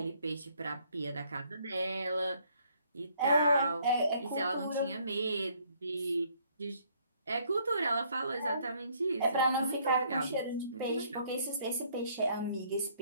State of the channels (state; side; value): inverted; both; correlation -0.65